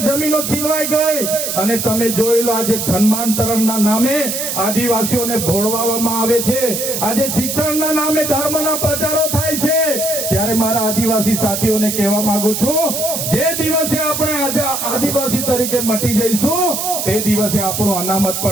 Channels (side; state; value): right; noise; hiss, 3 dB below the sound